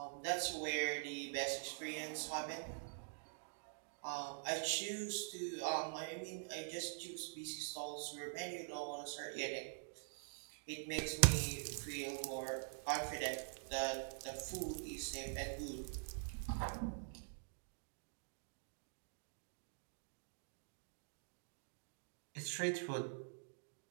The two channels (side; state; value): left; silent; digital silence